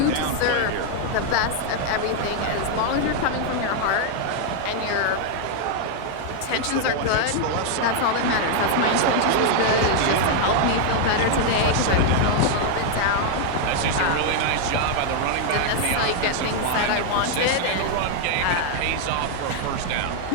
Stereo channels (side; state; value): both; different; correlation 0.00